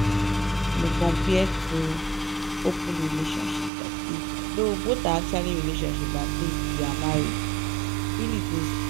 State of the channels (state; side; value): drops out; left; at 3.7 s